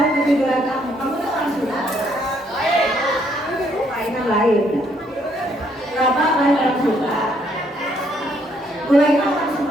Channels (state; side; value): normal; both; correlation 0.69